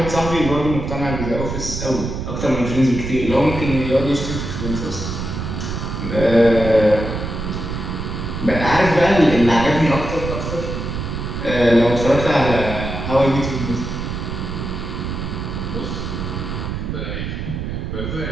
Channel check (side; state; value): right; noise; rumble, 5 dB below the sound